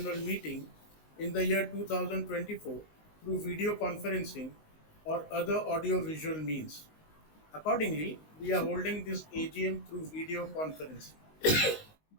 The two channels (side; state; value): right; late; 19 ms